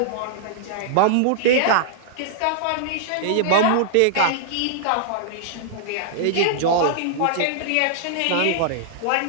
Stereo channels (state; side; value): different; both; correlation -0.01